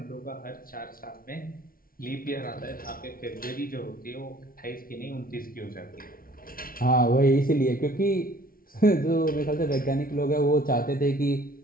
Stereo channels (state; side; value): late; right; 0.42 ms